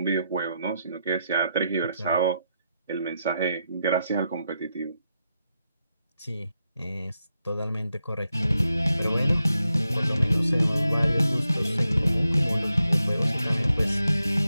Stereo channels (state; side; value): inverted; both; correlation -0.85